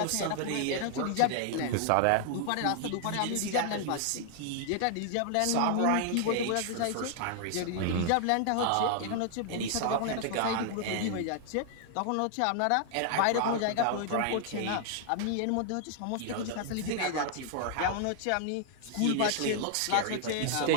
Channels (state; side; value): different; both; correlation 0.00